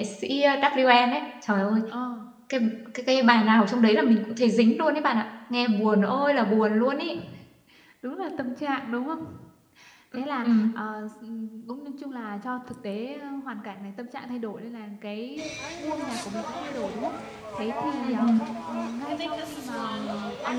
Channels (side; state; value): both; identical; correlation 1.00